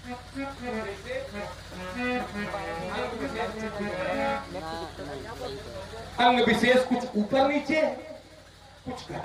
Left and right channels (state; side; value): identical; both; correlation 1.00